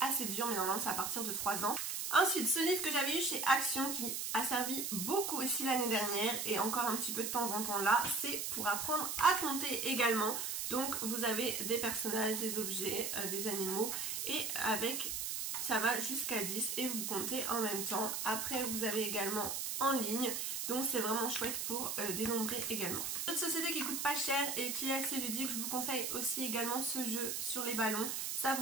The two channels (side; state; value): right; noise; hiss, 2 dB below the sound